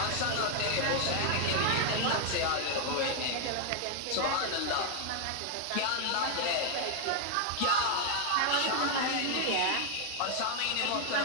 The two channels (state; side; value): different; both; correlation 0.01